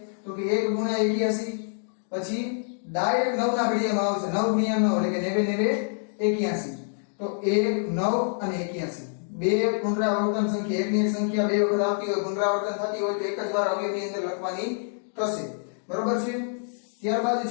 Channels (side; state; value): right; silent; digital silence